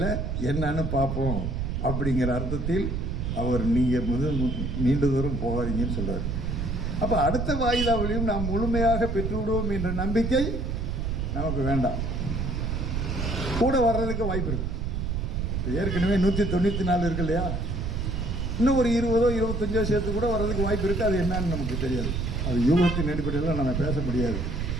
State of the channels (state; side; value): noise; right; rumble, 1 dB below the sound